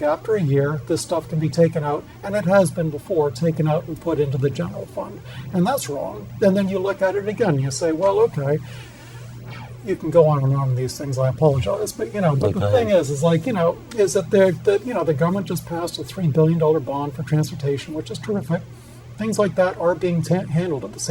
a year, this stuff can be taken out, and it has been before, taken out and put into the general fund. And that's wrong. And then you look at it again, you say, well, okay, you can go on and on these things, I apologize. But, but the thing is that the government just passed a $3 billion bond for transportation, which is terrific. Things like that are being handled at the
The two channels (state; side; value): identical; both; correlation 1.00